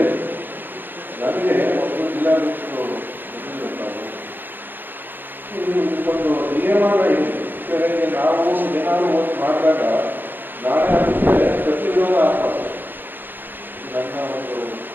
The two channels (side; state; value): left; late; 0.093 ms